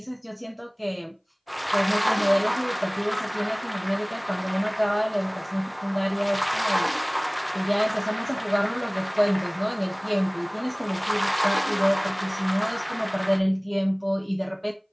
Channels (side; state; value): both; identical; correlation 1.00